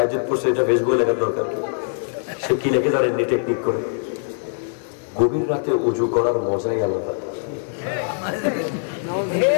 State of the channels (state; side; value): silent; right; digital silence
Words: পড়ছে, এটা ফেসবুকে লেখার দরকার কি? সে কি লিখে জানেননি টেকনিক করে? গভীর রাতে উজু করার মজাই আলাদা।